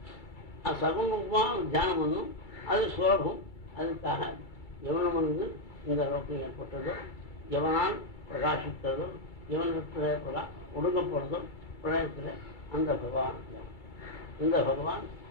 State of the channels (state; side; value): late; right; 2.3 ms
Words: சகுணமாக தியானம் பண்ணும். அது சுலபம். அதுக்காக எவனம் வந்து இந்த லோகம் ஏற்பட்டதோ, எவனால் பிரகாசித்ததோ, எவனத்தில் ஒடுங்கப்படுறதோ பிரளயத்தில் அந்த பகவான். இந்த பகவான்